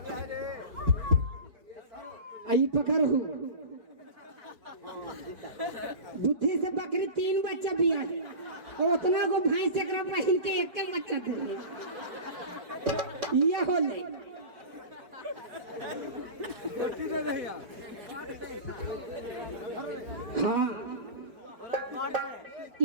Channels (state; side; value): late; left; 4.6 ms